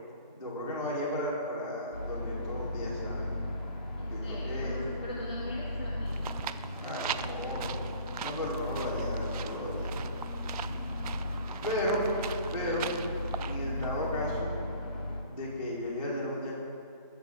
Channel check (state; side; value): inverted; both; correlation -0.50